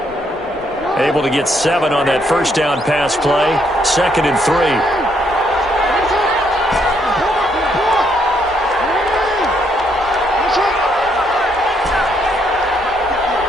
Able to get 7 on that first down pass play. 2nd and 3.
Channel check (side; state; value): both; normal; correlation 0.72